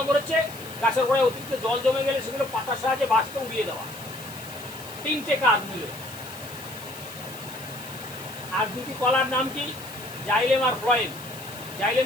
হচ্ছে গাছের গোড়ায় অতিরিক্ত জল জমে গেলে সেগুলো পাতার সাহায্যে বাষ্পে উড়িয়ে দেওয়া। 3টে কাজ মিলে। আর 2টি কলার নাম কি? জাইলেম আর ফ্লোয়েম। জাইলেম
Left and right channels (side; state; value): left; noise; hiss, 16 dB below the sound